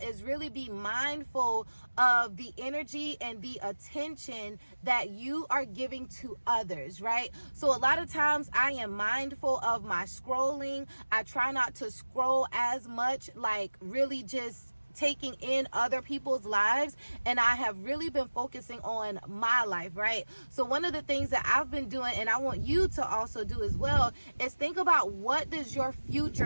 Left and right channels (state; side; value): inverted; both; correlation -1.00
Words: is really be mindful of the energy and the attention that you are giving to others, right? So a lot of times I am mindful of my scrolling. I try not to scroll as much, like really just taking in other people's lives, and I have really been focusing on my life, right? So one of the things that I've been doing, and I want you to also do as well, is think about, what does your